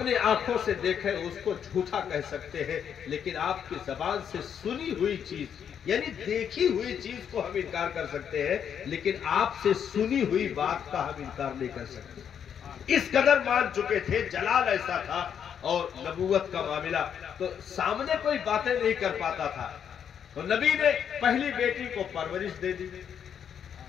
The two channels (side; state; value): right; quieter; 8.2 dB